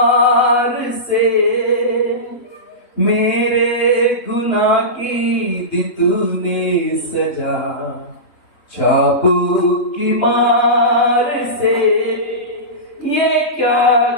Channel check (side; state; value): right; late; 3.5 ms